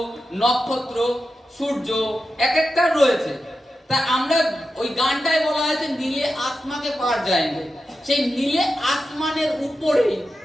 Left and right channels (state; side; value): normal; both; correlation 0.90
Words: নক্ষত্র, সূর্য এক একটা রয়েছে। তা আমরা ওই গানটায় বলা হয়েছে নীলে আসমাকে পার যায়নি, সেই নীলে আসমানের উপরেই